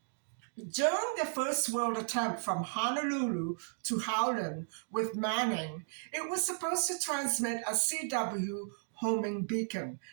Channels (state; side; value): silent; left; digital silence